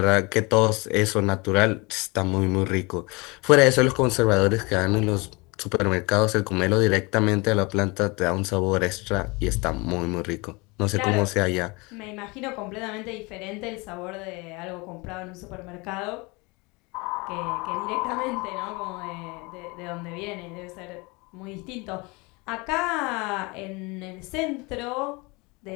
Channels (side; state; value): right; quieter; 26.5 dB